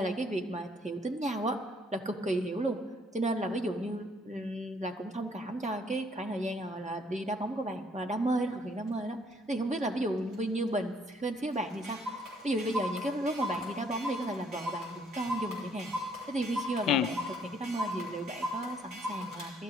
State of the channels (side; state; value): both; normal; correlation 0.65